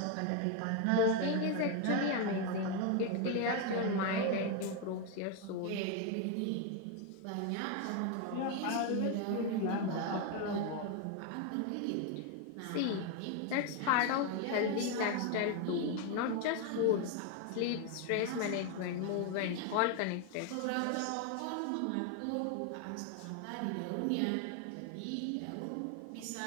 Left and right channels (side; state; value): both; different; correlation 0.01